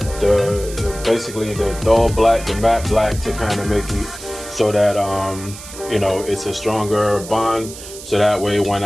basically the dull black, the matte black, to kind of make it so that you know, it's a stronger bond, so that way when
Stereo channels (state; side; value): noise; right; hiss, 14 dB below the sound